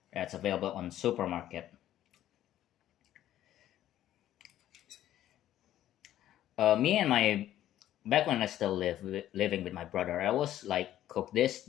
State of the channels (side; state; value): right; quieter; 12.5 dB